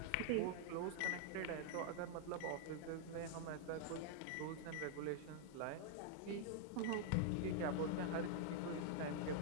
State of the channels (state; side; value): different; both; correlation 0.00